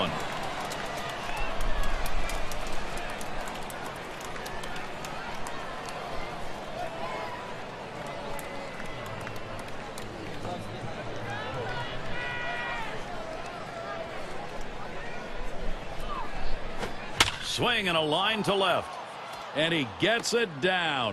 Swing and a line to left. And he gets it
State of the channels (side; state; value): both; identical; correlation 1.00